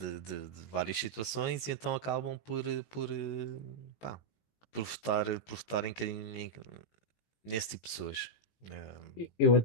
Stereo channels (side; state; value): right; late; 18 ms